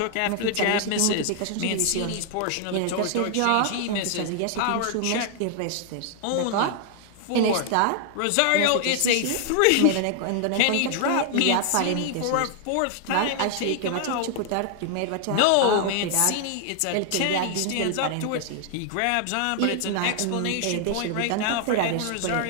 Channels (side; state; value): both; different; correlation 0.00